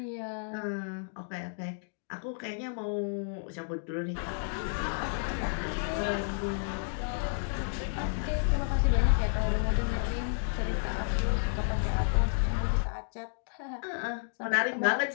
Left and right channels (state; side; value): silent; right; digital silence